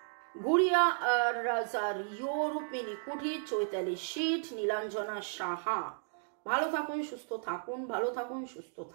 গুড়িয়া রাজার, রূপমিনী কুঠি, চৈতালি শীত, নীলাঞ্জনা সাহা। ভালো থাকুন, সুস্থ থাকুন, ভালো থাকুন, সুস্থ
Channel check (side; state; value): left; silent; digital silence